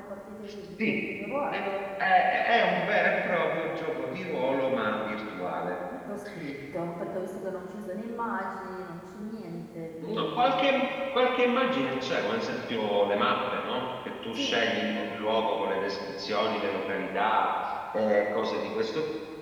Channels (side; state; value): both; identical; correlation 1.00